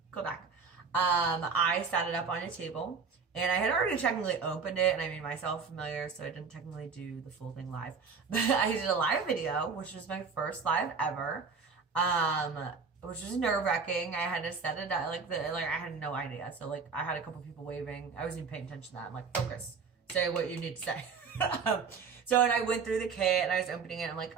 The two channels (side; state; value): left; quieter; 5.4 dB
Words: go back. I set it up on a table, and I had already technically opened it and I made myself familiar, so I didn't technically do the full thing live. But I did a live video, which was my first live ever, which was nerve-wracking. I had to set it up, I had no idea. So I had a couple people waving. I wasn't even paying attention to that. I'm like, focus. Say what you need to say. So, and I went through the kit and I was opening it. I'm like,